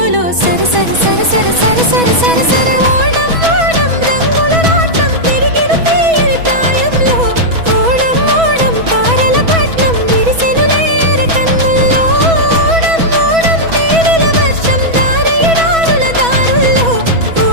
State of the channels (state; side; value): late; left; 6.1 ms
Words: సర సర సర సర సర సర సర సర. ఓడం ఓడం రంగుల రాట్నం తిరిగిన తీయని ప్రాయంలో. ఓడం ఓడం తారల పట్నం విరిసెను లేయర కన్నుల్లో. ఓడం ఓడం తేనెల వర్షం దారేడారుల దారుల్లో.